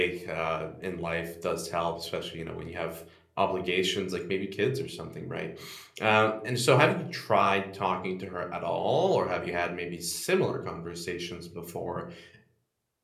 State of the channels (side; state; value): both; identical; correlation 1.00